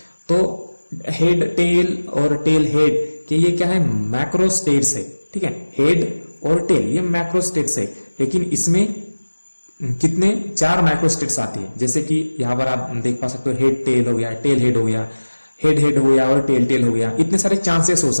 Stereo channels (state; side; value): inverted; both; correlation -1.00